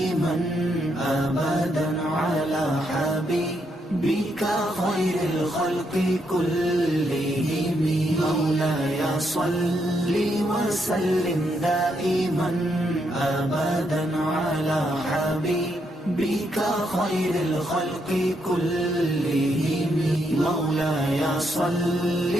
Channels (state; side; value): normal; both; correlation 0.78